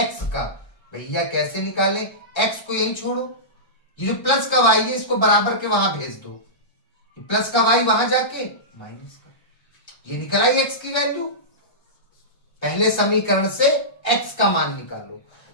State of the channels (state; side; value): late; right; 1.3 ms